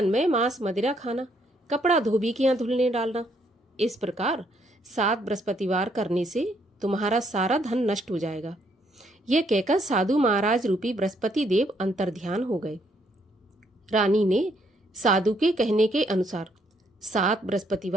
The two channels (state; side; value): normal; both; correlation 0.71